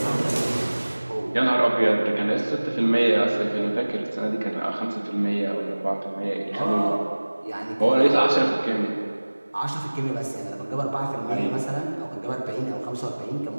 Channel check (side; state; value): both; inverted; correlation -1.00